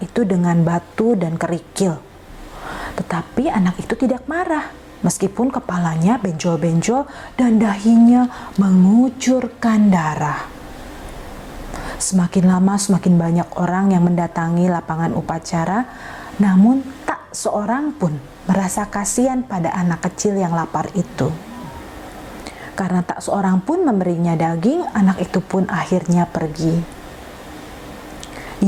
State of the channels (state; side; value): identical; both; correlation 1.00